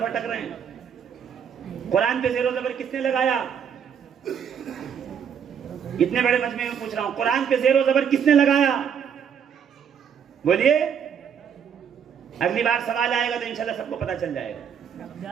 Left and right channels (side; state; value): left; quieter; 7.8 dB